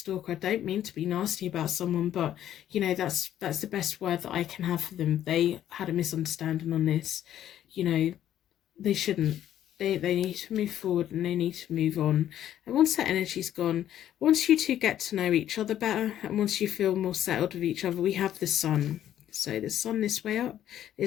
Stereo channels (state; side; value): quieter; right; 11.4 dB